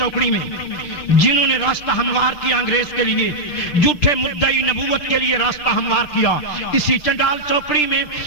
میں، جنہوں نے راستہ ہموار کیا انگریز کے لیے، جھوٹے مدعی نبوت کے لیے راستہ ہموار کیا۔ اسی چنڈال چوکڑی میں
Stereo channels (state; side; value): late; right; 6.7 ms